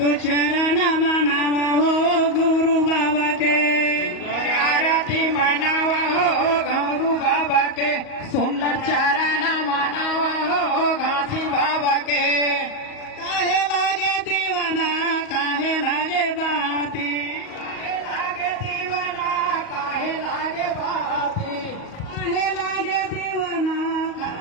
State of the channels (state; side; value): late; right; 38 ms